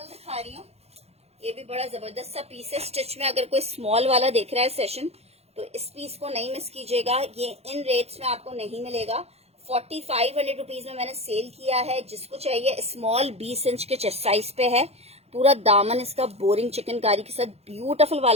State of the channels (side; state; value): left; late; 0.30 ms